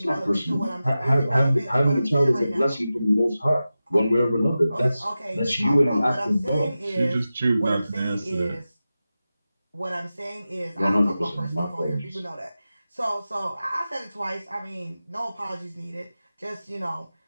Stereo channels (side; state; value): both; inverted; correlation -0.94